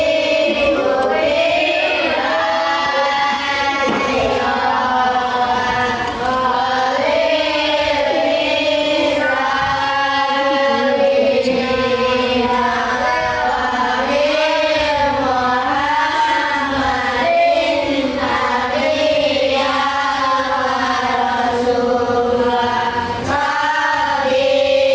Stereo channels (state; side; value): identical; both; correlation 1.00